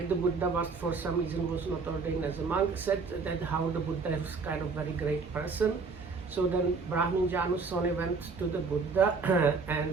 the Buddha but for some reason was not ordained as a monk, said that how the Buddha is kind of very great person. So then Brahmin Janusoni went to the Buddha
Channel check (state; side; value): quieter; left; 4.6 dB